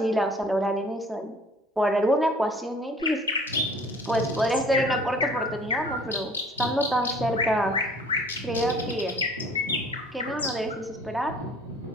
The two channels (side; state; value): both; normal; correlation 0.51